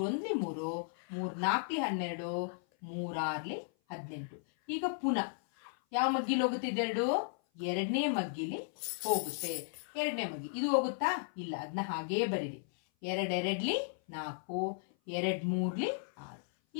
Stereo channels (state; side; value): silent; right; 54 dB below the other